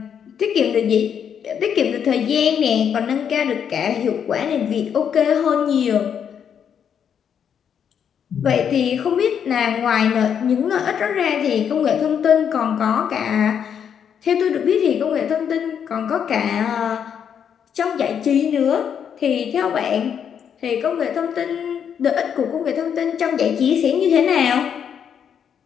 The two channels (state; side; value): quieter; right; 8.0 dB